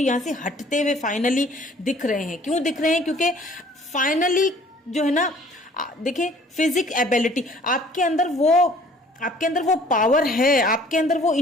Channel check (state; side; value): normal; both; correlation 0.54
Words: से हटते हुए फाइनली दिख रहे हैं। क्यों दिख रहे हैं? क्योंकि फाइनली जो है ना, देखिए फिजिक एबिलिटी आपके अंदर वो पावर है, आपके अंदर वो